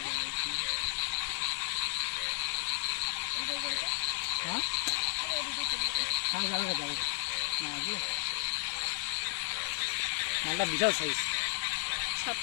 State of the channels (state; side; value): silent; right; digital silence